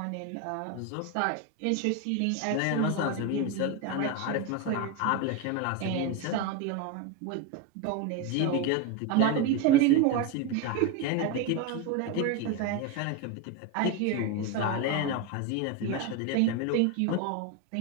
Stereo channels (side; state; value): both; different; correlation 0.03